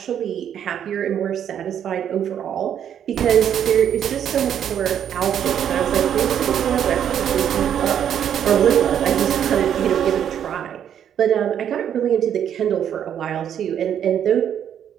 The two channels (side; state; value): left; quieter; 9.3 dB